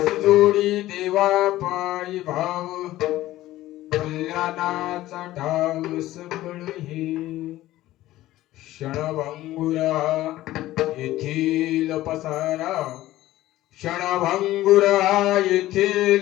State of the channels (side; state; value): right; quieter; 15.6 dB